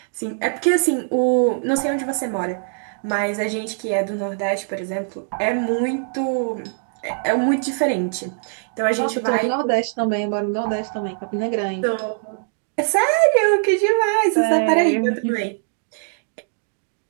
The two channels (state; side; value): silent; left; digital silence